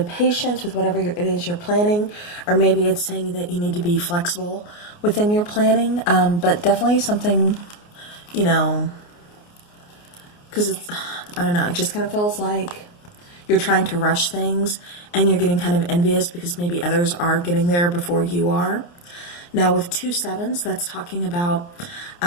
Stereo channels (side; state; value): right; late; 29 ms